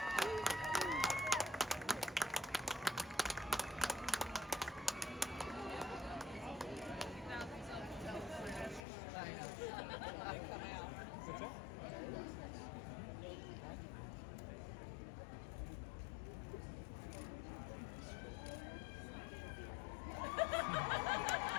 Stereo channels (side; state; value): right; drops out; at 8.8 s